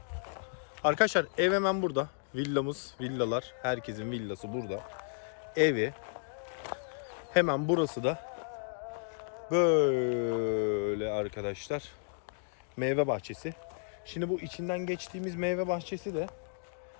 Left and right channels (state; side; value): silent; right; digital silence